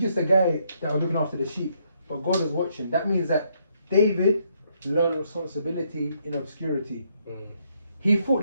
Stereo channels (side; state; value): both; inverted; correlation -0.73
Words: just a guy that was looking after the sheep. But God was watching. That means that David learned responsibility in obscurity. He fought